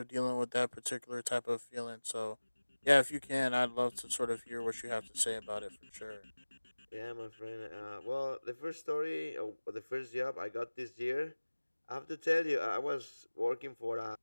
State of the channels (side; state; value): both; inverted; correlation -1.00